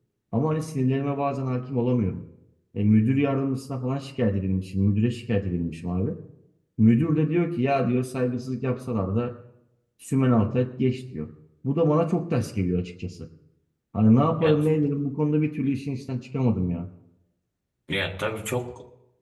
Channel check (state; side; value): identical; both; correlation 1.00